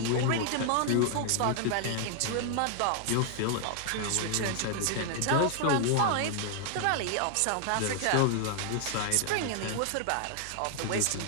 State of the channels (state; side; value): different; both; correlation 0.00